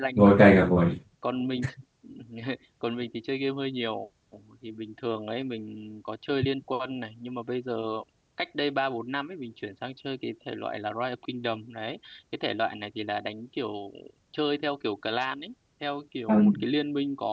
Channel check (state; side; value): identical; both; correlation 1.00